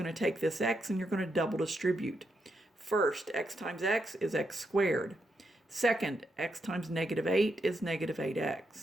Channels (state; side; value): normal; both; correlation 0.82